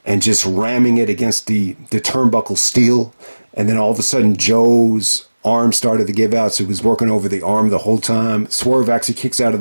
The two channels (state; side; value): inverted; both; correlation -1.00